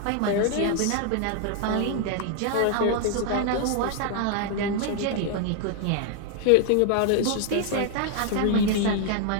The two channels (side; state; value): both; different; correlation 0.00